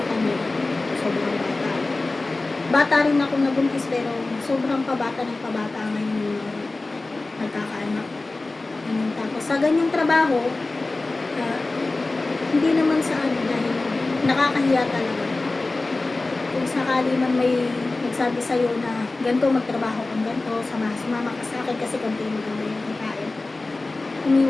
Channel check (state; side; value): quieter; right; 3.2 dB